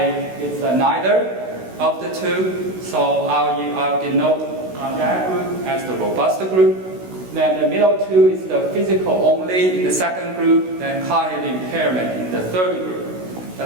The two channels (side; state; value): left; late; 16 ms